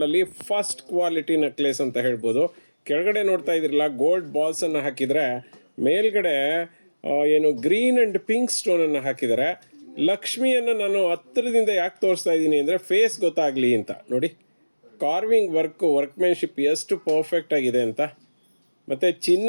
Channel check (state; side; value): inverted; both; correlation -1.00